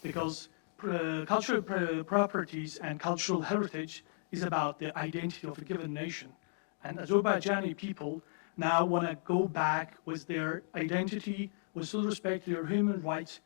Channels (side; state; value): right; silent; digital silence